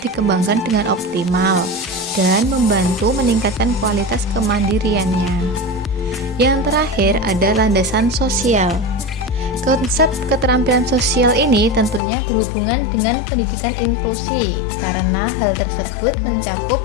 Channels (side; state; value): right; drops out; at 12.0 s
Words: dikembangkan dengan optimal dan membantu meningkatkan kualitas kemandiriannya. Yang terakhir ada landasan sosial. Konsep keterampilan sosial ini tentunya berhubungan dengan pendidikan inklusi karena hal tersebut mencakup